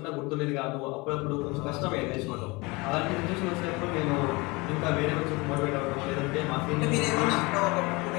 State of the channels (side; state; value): right; quieter; 25.1 dB